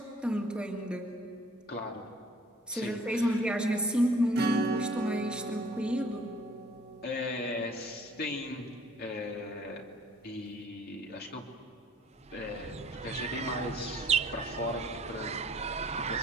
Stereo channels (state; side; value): normal; both; correlation 0.56